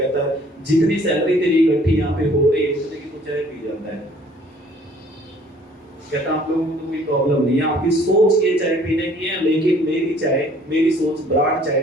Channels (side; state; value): both; normal; correlation 0.57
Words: है जितनी सैलरी तेरी इकट्ठी यहाँ पे हो रही है उतने की तो चाय पी जाता है। कहता आप लोगों को तो कोई प्रॉब्लम नहीं है, आपकी सोच ये चाय पीने की है, लेकिन मेरी सोच ब्रांड चाय